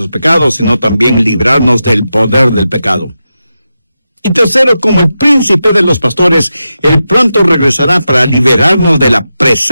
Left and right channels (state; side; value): inverted; both; correlation -0.90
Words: pecados, sino también librarnos del poder del pecado. Y tercero, como el príncipe de los pastores, Él pronto regresará para liberarnos de la